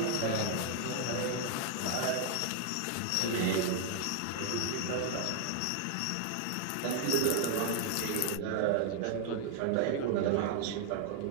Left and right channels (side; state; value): both; different; correlation 0.00